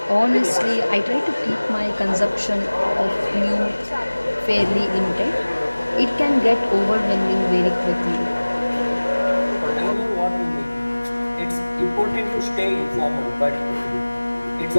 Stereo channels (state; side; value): inverted; both; correlation -1.00